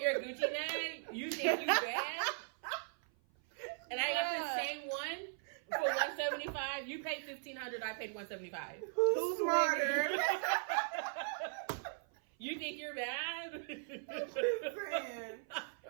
Gucci bag. You think you bad? And I got the same one for $175. You paid $1,500. I paid $175. Who's smarter? You think you're bad? Man.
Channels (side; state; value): left; silent; 52 dB below the other